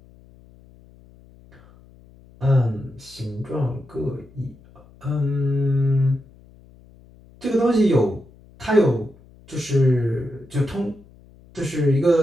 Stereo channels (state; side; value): noise; left; hum, 25 dB below the sound